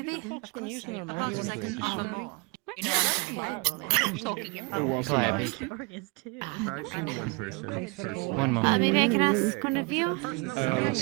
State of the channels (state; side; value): quieter; left; 29.9 dB